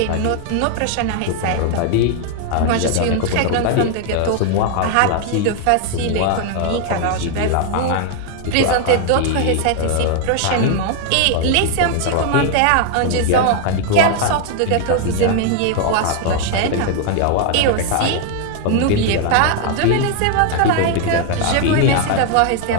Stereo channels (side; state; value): both; different; correlation 0.00